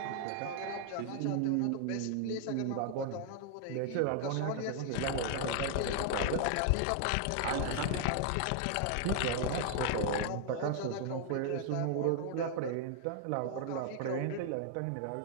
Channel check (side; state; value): both; different; correlation 0.00